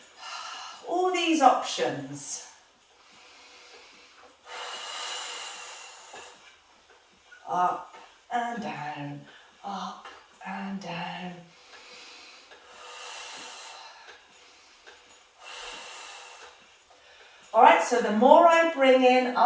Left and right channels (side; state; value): both; identical; correlation 1.00